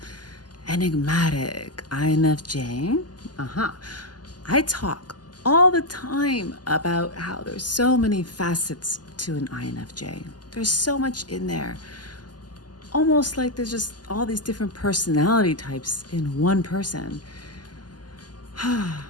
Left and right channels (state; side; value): late; right; 0.70 ms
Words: enigmatic INFJ? Uh-huh. I talk all the time about how there's so many facets to an INFJ. There's so much in there. Almost like there's just all these different personality types in one person.